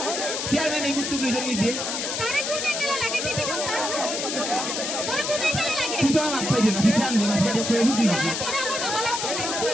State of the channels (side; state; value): left; noise; hiss, 3 dB below the sound